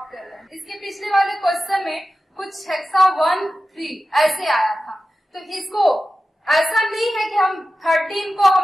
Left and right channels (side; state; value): both; normal; correlation 0.94